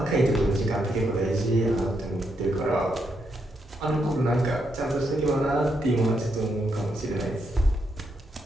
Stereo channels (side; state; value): both; normal; correlation 0.79